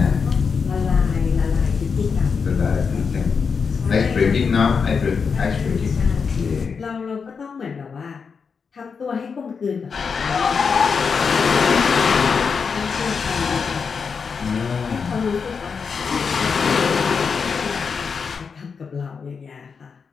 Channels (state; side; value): quieter; right; 5.7 dB